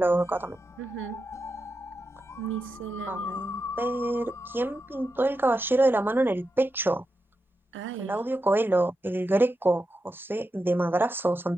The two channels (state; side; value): normal; both; correlation 0.88